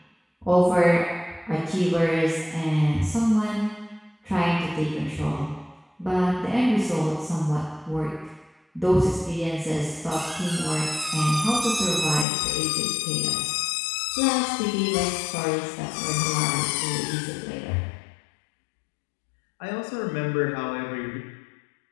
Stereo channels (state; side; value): drops out; right; at 12.2 s